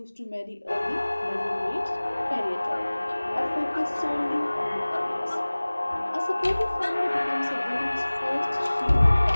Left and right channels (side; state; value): both; inverted; correlation -1.00